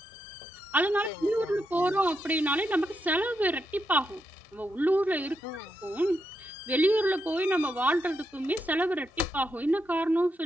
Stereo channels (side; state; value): both; normal; correlation 0.83